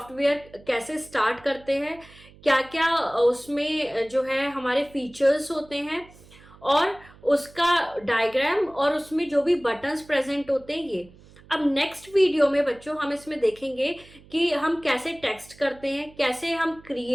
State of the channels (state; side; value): noise; right; hum, 24 dB below the sound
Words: कैसे स्टार्ट करते हैं, क्या क्या उसमें जो है हमारे फीचर्स होते हैं और उसका डायग्राम और उसमें जो भी बटन्स प्रेजेंट होते हैं ये. अब नेक्स्ट वीडियो में बच्चों हम इसमें देखेंगे कि हम कैसे टेक्स्ट करते हैं, कैसे हम